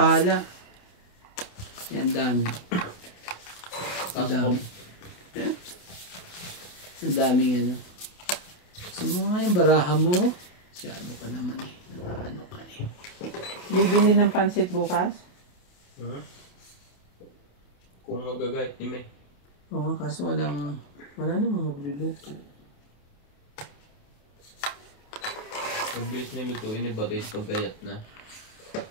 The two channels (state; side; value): late; right; 28 ms